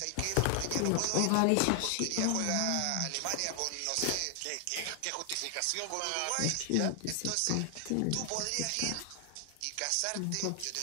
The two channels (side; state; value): both; different; correlation 0.00